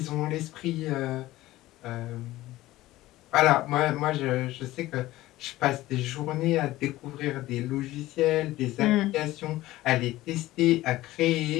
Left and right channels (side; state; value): right; quieter; 16.7 dB